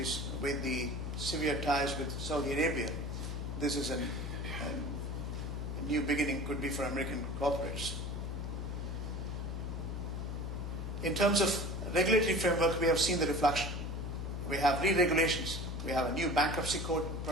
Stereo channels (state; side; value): noise; left; hum, 4 dB below the sound